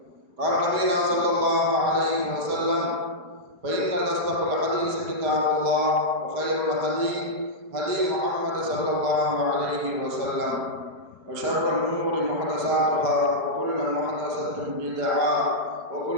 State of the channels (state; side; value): late; left; 4.8 ms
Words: قال نبينا صلى الله عليه وسلم: فإن أصدق الحديث كتاب الله، وخير الهدي هدي محمد صلى الله عليه وسلم، وشر الأمور محدثاتها، وكل محدثة بدعة،